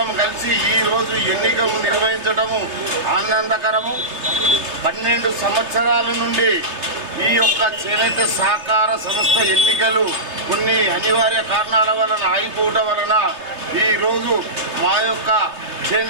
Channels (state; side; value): late; left; 3.2 ms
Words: కలిసి ఈరోజు ఎన్నికలు నిర్వహించడము ఆనందకరము. 12 సంవత్సరాల నుండి ఈ యొక్క చేనేత సహకార సంస్థ ఎన్నికలు కొన్ని అనివార్య కారణాల వలన ఆగిపోవడం వలన ఈరోజు మా యొక్క